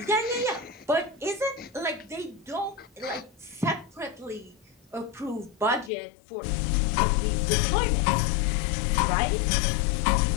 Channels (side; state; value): right; drops out; at 5.9 s